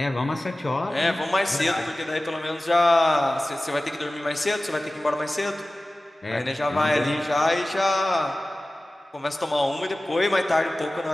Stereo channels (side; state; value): both; normal; correlation 0.97